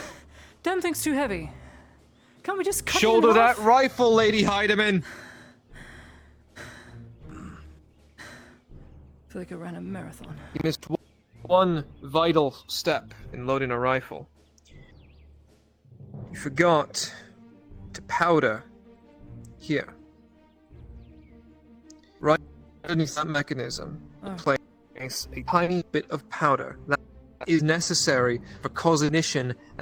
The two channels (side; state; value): both; identical; correlation 1.00